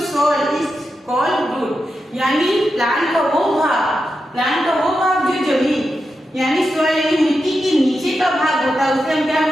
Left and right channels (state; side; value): normal; both; correlation 0.88